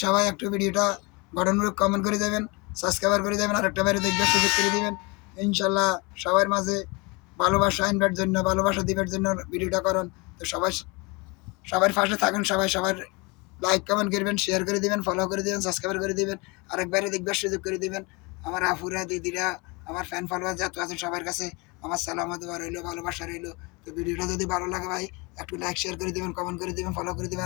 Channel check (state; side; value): quieter; right; 27.6 dB